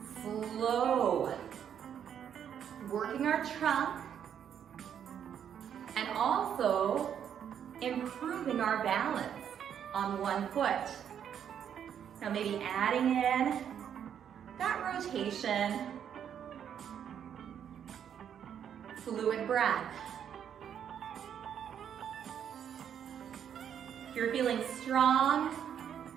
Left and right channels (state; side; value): quieter; left; 8.8 dB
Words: Slow. Working our trunk and also improving our balance on one foot. Now maybe adding in that rotation. Fluid breath. If you're feeling strong,